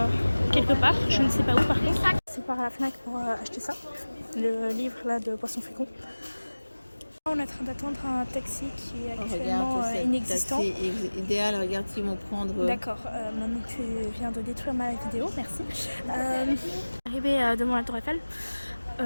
quelque part, je ne sais pas où par contre. C'est par la Fnac pour acheter ça. Le livre là de Poisson Fécond. On est en train d'attendre un taxi qui est actuellement inexistant. C'est idéal, regarde s'ils vont prendre... D'accord, maintenant tu viens de détruire ma vidéo, merci. Arrivé devant la Tour Eiffel,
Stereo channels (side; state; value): both; inverted; correlation -1.00